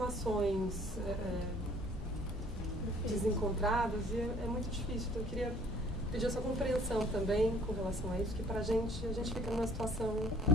desencontradas e é muito difícil. Então, eu queria pedir a sua compreensão também com relação a isso, que pra gente, a gente fica numa situação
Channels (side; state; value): both; normal; correlation 0.56